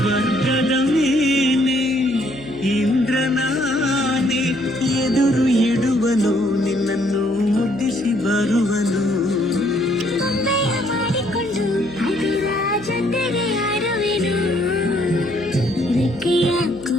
ಮೇಲೆ ಇಂದ್ರನಾನೆ ಎದುರು ಇಡುವನು, ನಿನ್ನನ್ನು ಮುದ್ದಿಸಿ ಬರುವನು. ಗೊಂಬೆಯ ಮಾಡಿಕೊಂಡು ಅದರ ಜೊತೆಗೆ ಆಡುವೆನು. ರೆಕ್ಕೆಯ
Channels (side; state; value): right; noise; hum, 17 dB below the sound